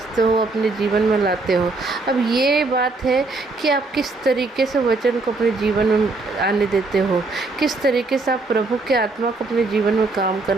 हो, अपने जीवन में लाते हो। अब ये बात है कि आप किस तरीके से वचन को अपने जीवन में आने देते हो, किस तरीके से आप प्रभु के आत्मा को अपने जीवन में काम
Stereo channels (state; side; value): quieter; left; 3.5 dB